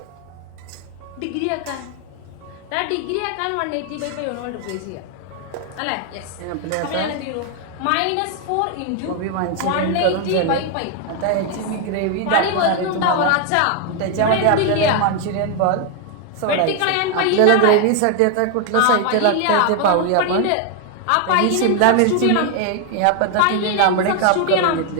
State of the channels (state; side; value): different; both; correlation 0.01